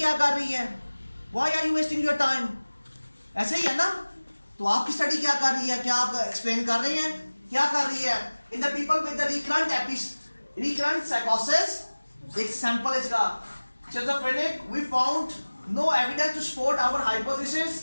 कर रही है, why are you wasting your time, ऐसे ही है ना। तो आपकी स्टडी क्या कर रही है, क्या आप एक्सप्लेन कर रहे हैं, क्या कर रही है। In the people with the recurrent साइकोसिस, एक सैंपल इसका schizophrenic, we found no evidence to support our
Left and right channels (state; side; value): inverted; both; correlation -1.00